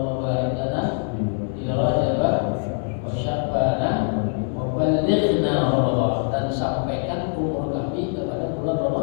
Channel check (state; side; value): silent; right; 61 dB below the other